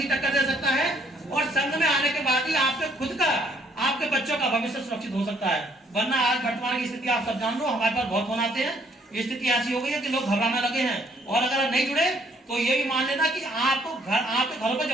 टक्कर दे सकता है, और संघ में आने के बाद ही आपके खुद का, आपके बच्चों का भविष्य सुरक्षित हो सकता है। वरना आज वर्तमान की स्थिति आप सब जान लो, हमारे पास बहुत फोन आते हैं, स्थिति ऐसी हो गई है कि लोग घबराने लगे हैं, और अगर नहीं जुड़े तो ये भी मान लेना कि आपको आपके घरों पर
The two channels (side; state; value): both; normal; correlation 0.66